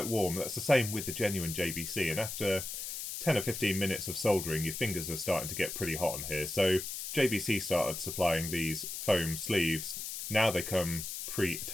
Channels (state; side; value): noise; left; hiss, 6 dB below the sound